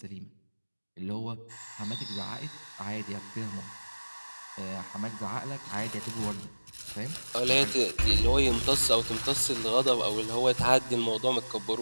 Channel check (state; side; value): inverted; both; correlation -1.00